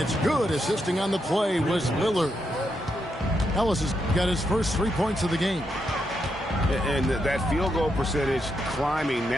good. Assisting on the play was Lillard. Ellis has got his first 3 points of the game. And that field goal percentage climbing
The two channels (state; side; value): normal; both; correlation 0.82